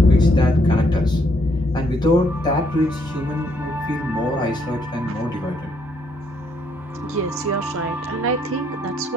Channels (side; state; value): both; normal; correlation 0.71